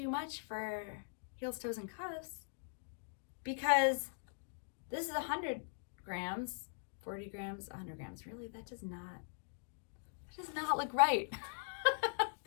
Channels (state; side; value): silent; right; digital silence